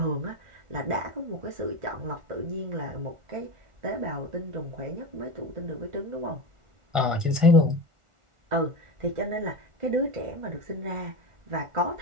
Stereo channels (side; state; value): left; late; 1.4 ms